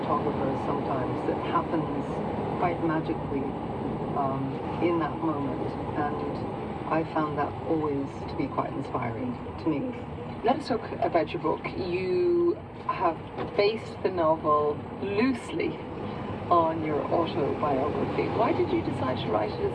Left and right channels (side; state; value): both; identical; correlation 1.00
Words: photographers sometimes that happens quite magically in that moment, and I found that always to be quite inspiring to me. Let us talk about your book. You have based the novel loosely on your autobiography. Why did you decide to write it as